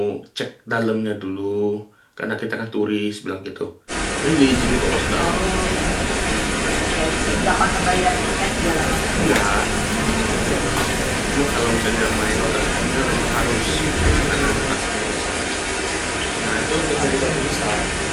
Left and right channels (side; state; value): both; identical; correlation 1.00